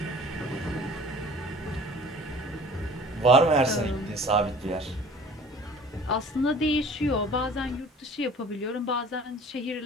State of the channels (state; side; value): normal; both; correlation 0.47